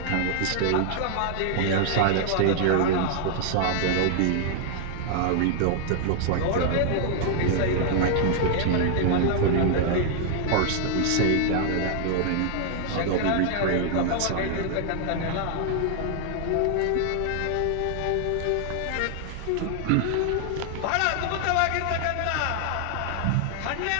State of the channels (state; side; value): different; both; correlation 0.00